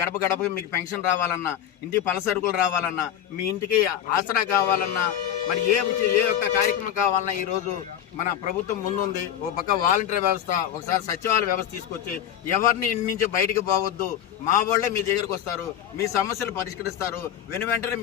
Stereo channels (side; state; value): right; quieter; 10.2 dB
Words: గడపకి మీకు పెన్షన్ రావాలన్నా, ఇంటికి పలసరుకులు రావాలన్నా, మీ ఇంటికి ఆసరా కావాలన్నా, మరి ఏ ఒక్క కార్యక్రమం కావాలన్నా ఈరోజు మన ప్రభుత్వం ముందుంది. ఒక పక్క వాలంటీర్ వ్యవస్థ, ఒకసారి సచివాలయ వ్యవస్థ తీసుకొచ్చి ఎవరిని ఇంటి నుంచి బయటికి పోవద్దు, మా వాళ్ళే మీ దగ్గరకు వస్తారు, మీ సమస్యలు పరిష్కరిస్తారు, వెంటనే